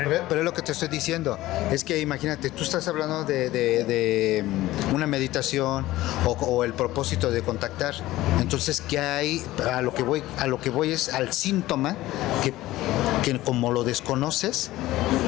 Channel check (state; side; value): quieter; right; 16.6 dB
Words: es lo que te estoy diciendo. Es que imagínate, tú estás hablando de una meditación o el propósito de contactar. Entonces, ¿qué hay? A lo que voy es al síntoma que como lo desconoces